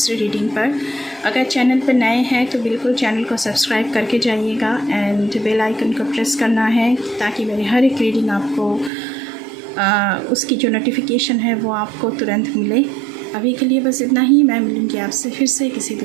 रीडिंग पर। अगर चैनल पर नए हैं तो बिल्कुल चैनल को सब्सक्राइब करके जाइएगा एंड बेल आइकन को प्रेस करना है ताकि मेरी हर एक रीडिंग आपको उसकी जो नोटिफिकेशन है वो आपको तुरंत मिले। अभी के लिए बस इतना ही। मैं मिलूँगी आपसे फिर से किसी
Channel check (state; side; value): drops out; left; at 8.9 s